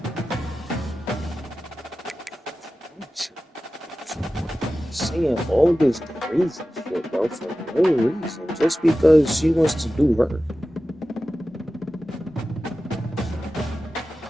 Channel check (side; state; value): both; normal; correlation 0.94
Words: saying all this crazy shit, bro, for no reason, just because she wants to do her.